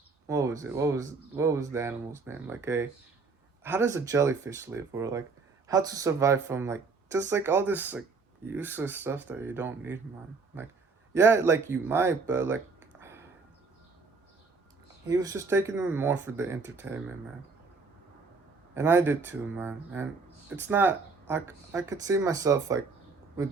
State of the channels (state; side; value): quieter; left; 4.4 dB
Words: what was it what was the animal's name, like a how does a jellyfish live, or like how to survive from like just like all this like useless stuff that you don't need, man. Like yeah, like you might, but like he was just taking them more for the entertainment, man. And I did too, man. And it's not I could see myself like